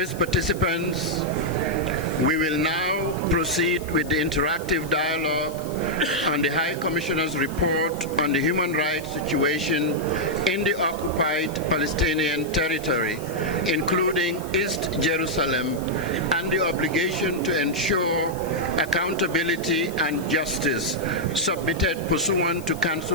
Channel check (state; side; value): noise; left; hiss, 18 dB below the sound